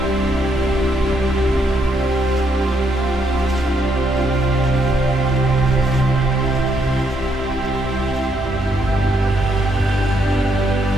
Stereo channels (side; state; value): both; normal; correlation 0.75